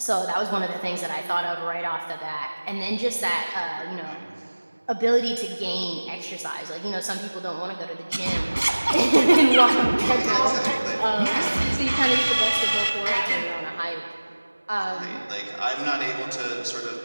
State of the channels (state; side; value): inverted; both; correlation -1.00